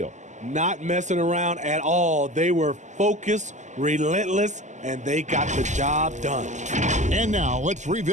Not messing around at all. They were focused, relentless, and they got the job done. And now let's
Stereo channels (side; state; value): left; late; 0.34 ms